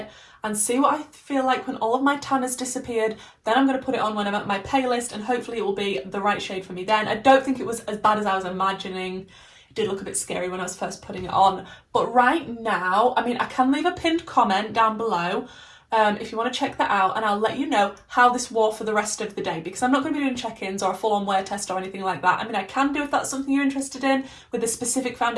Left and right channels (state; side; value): identical; both; correlation 1.00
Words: and see what I feel like when all of my tan has disappeared. Then I'm going to put it on when I'm at my palest, and hopefully it will be the right shade for me then. I don't think it was as bad as I was imagining. It did look a bit scary when I was first putting it on. But right now, I mean, I can leave a pinned comment down below if you want to check that out, and I'll let you know how this wore for the rest of the day, because I'm not going to be doing check-ins or a full-on wear test or anything like that. I mean, I can do if that's something you're interested in with a specific